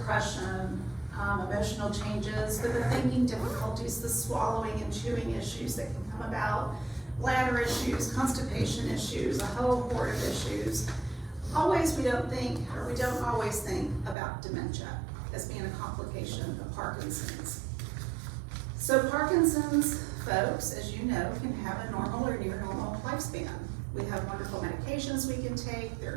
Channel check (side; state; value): left; drops out; at 14.2 s